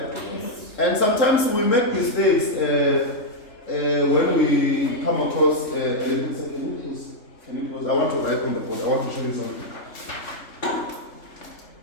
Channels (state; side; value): late; right; 3.3 ms